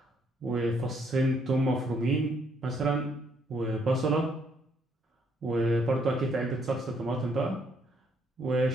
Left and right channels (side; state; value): both; normal; correlation 0.70